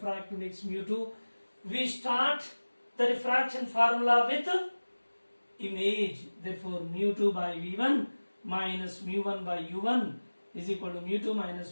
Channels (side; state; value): both; inverted; correlation -1.00